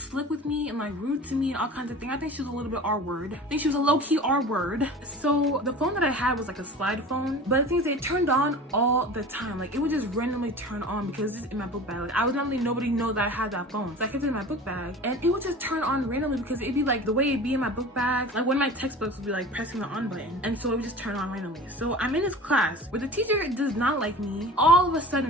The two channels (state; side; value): normal; both; correlation 0.38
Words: with me and like rude to me and all kinds of things. I think she was a little bit R-word. I think she was a low-key R-word. So the phone that I had was like a slide phone, but the thing is it turned on all the time. Like, it would just randomly turn on because it's in my book bag. Like, I was not letting nobody know that I had that phone, so I kept it in my book bag, and it would just turn on randomly because it'd be like the way it'd be in my book bag. Like, one of my textbooks would be like pressing the on button, and so it would just turn on randomly. So I'm in this class where the teacher does not like me. All of a